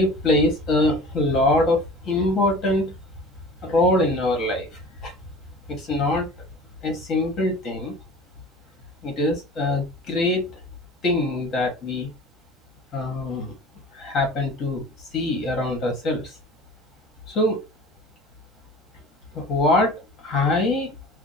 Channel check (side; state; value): both; normal; correlation 0.41